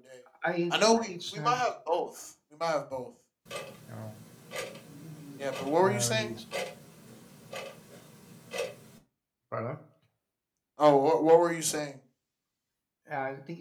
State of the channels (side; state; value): both; identical; correlation 1.00